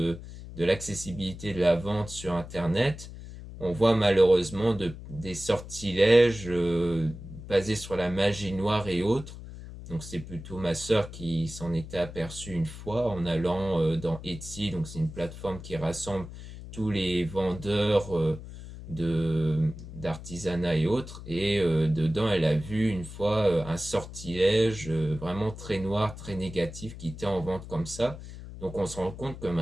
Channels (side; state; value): left; noise; hum, 13 dB below the sound